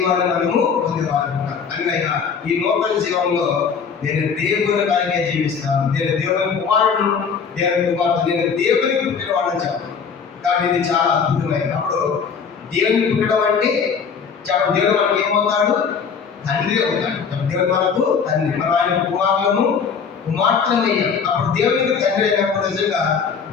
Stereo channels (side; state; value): right; quieter; 6.2 dB